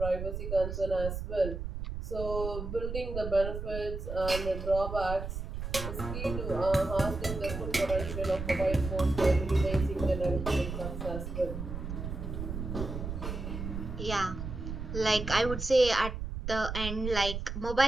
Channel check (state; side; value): noise; right; rumble, 6 dB below the sound